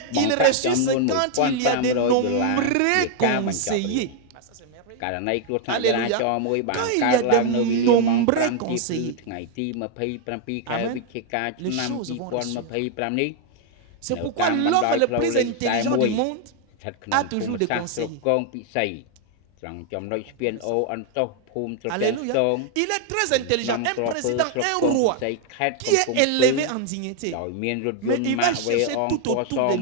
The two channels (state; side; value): different; both; correlation 0.00